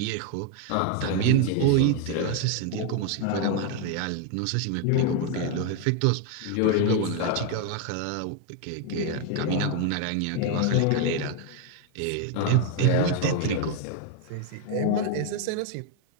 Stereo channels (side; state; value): both; different; correlation 0.01